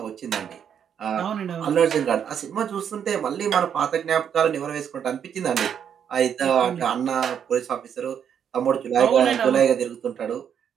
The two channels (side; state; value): left; quieter; 8.3 dB